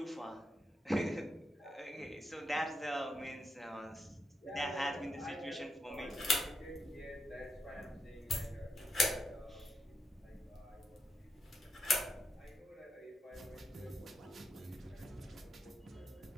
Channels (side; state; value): both; normal; correlation 0.83